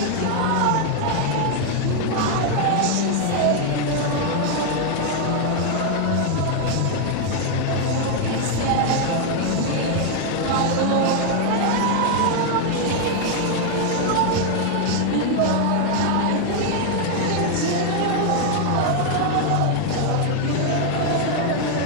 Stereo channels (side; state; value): both; different; correlation 0.00